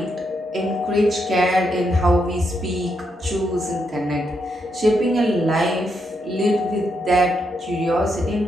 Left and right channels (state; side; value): normal; both; correlation 0.80